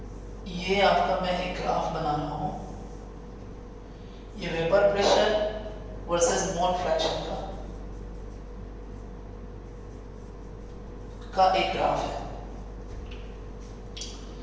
ये आपका मैं एक ग्राफ बना रहा हूँ, ये vapour pressure versus mole fraction का एक ग्राफ है।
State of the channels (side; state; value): both; identical; correlation 1.00